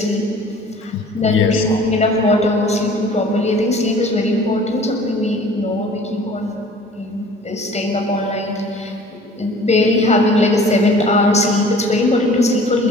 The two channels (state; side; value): normal; both; correlation 0.49